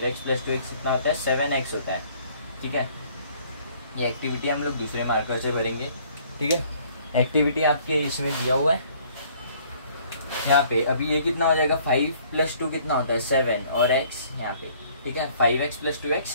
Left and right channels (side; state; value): both; inverted; correlation -0.59